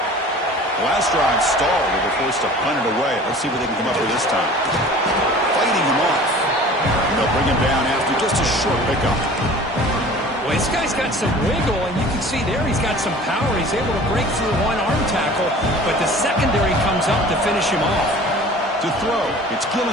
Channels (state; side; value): normal; both; correlation 0.44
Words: The last drive stalled. They were forced to punt it away. Let's see what they can come up with this time. Fighting him off. And they'll bring him down after just a short pickup. Well, this guy's got some wiggle, and you can see there he's got some power. He's able to break through one arm tackle, but the secondary comes up to finish him off. To throw, it's